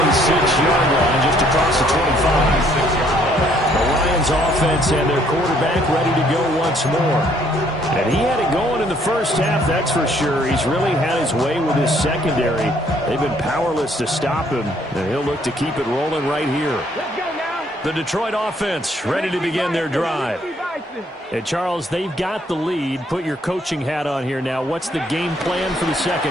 line, just across the 25. The Lions offense and their quarterback ready to go once more. And he had it going in the first half, that's for sure. He's really had his way with his secondary. They've been powerless to stop him, and he'll look to keep it rolling right here. The Detroit offense ready to begin their drive. And Charles, they've got the lead. Put your coaching hat on here now. What's the game plan for the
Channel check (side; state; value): both; normal; correlation 0.65